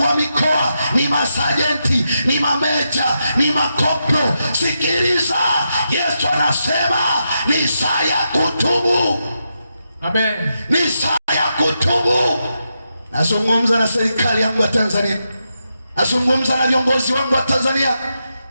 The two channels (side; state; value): both; inverted; correlation -0.85